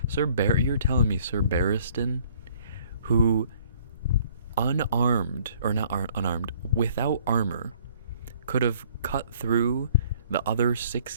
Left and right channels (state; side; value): inverted; both; correlation -0.59